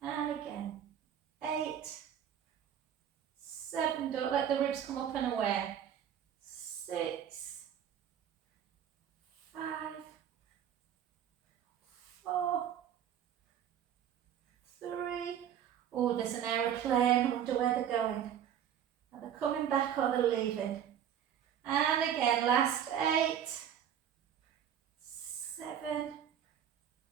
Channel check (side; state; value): left; quieter; 9.4 dB